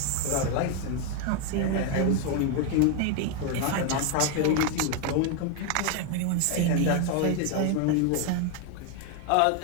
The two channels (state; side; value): different; both; correlation 0.01